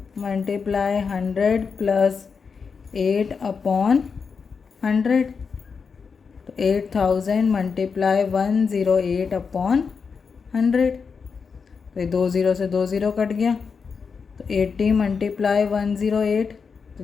मल्टीप्लाई 100 प्लस 8 अपॉन 100, तो 8000 मल्टीप्लाई 108 अपॉन 100। तो 20 से 20 कट गया, तो 80 मल्टीप्लाई 108, तो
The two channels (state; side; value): quieter; right; 5.5 dB